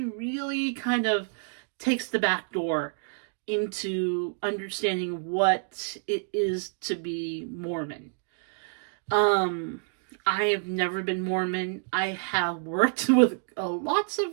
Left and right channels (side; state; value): left; silent; 59 dB below the other